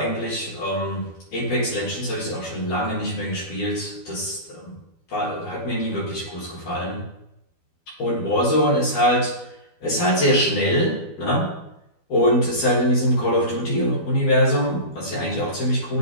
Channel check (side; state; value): right; late; 12 ms